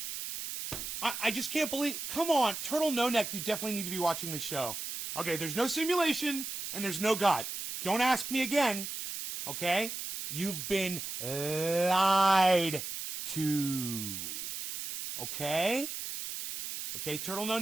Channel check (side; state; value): right; noise; hiss, 6 dB below the sound